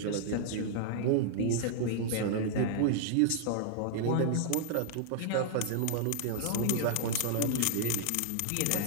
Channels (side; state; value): both; different; correlation -0.01